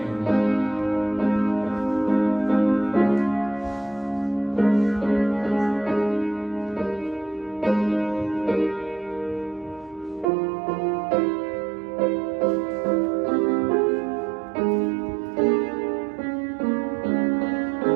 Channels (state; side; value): drops out; left; at 10.2 s